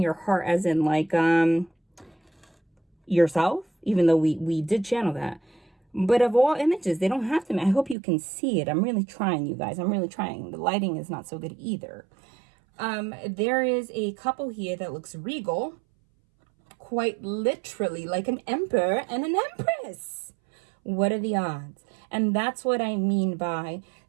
heart as in like yourself, even though we did channel that. But of all images, they don't have to. I hope you can see it. I'm really trying, you guys. I'm really trying. The lighting is not so good either. There is a couple here that looks regal. Quite literally like an emperor and an empress. What are the odds? And that's what I mean by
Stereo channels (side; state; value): left; drops out; at 8.0 s